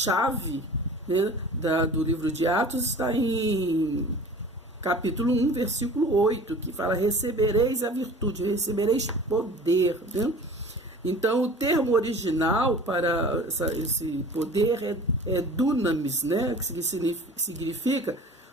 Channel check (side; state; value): both; normal; correlation 0.42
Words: né, do livro de Atos está em capítulo 1, versículo 8, que fala: recebereis a virtude, recebereis poder, né? Então, o termo original para esse poder é dunamis, né? Que significa